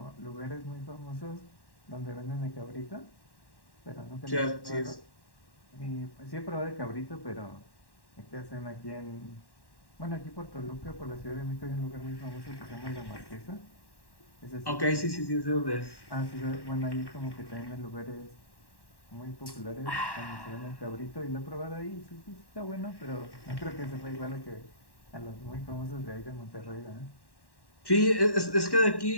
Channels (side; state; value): right; late; 1.1 ms